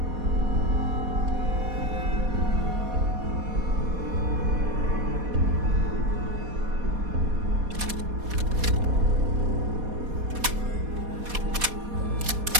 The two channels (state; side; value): late; left; 4.2 ms